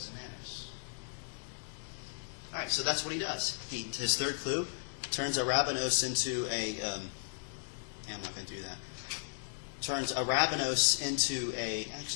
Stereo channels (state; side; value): silent; right; digital silence